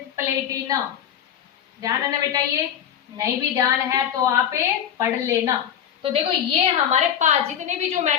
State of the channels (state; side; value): quieter; right; 9.4 dB